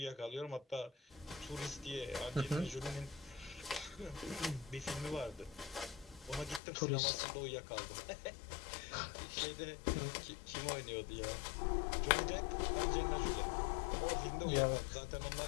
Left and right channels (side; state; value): right; drops out; at 6.6 s